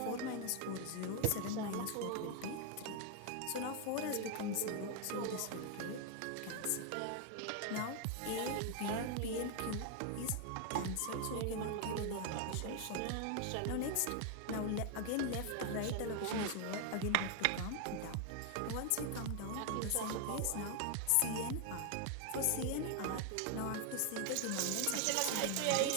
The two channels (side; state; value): both; different; correlation 0.00